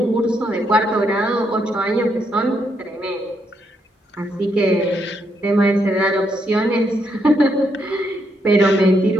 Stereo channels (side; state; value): both; normal; correlation 0.77